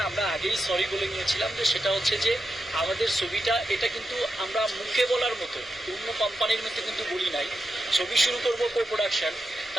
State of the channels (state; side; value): normal; both; correlation 0.87